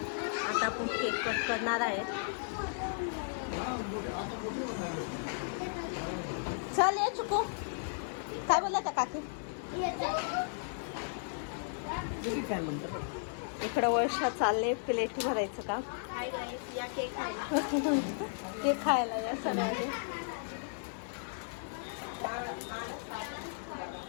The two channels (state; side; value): silent; right; digital silence